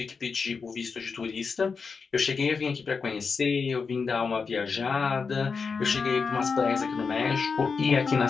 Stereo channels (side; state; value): right; quieter; 5.1 dB